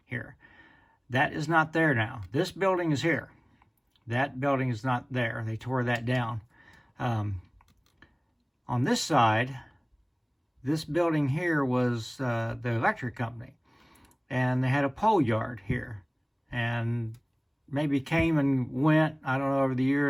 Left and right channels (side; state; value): both; identical; correlation 1.00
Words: here. That is not there now. This building is here. That building is not there. They tore that down. On this side, this building here was the electric company, and they had a pole yard here, and maybe came and went, I don't know, over the